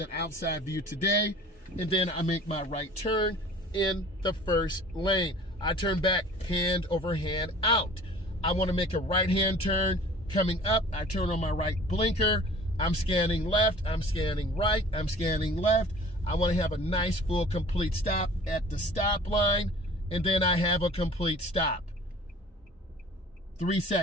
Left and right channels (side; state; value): both; normal; correlation 0.46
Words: outside view today. And then I make my right turn in the first lane. I turn back hand over hand out. I want to make a right-hand turn. Coming up, I turn on my right blinker. I'm scanning left, I'm scanning right, I'm scanning left. I want to have a nice, full, complete stop at the stop line, and then I have a complete stop. 3